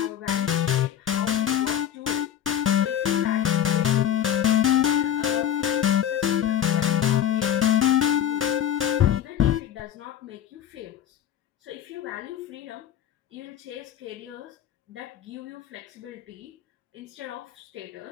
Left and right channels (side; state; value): right; quieter; 10.1 dB